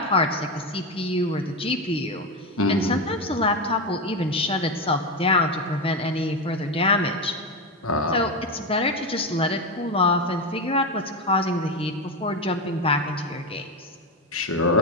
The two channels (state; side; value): normal; both; correlation 0.14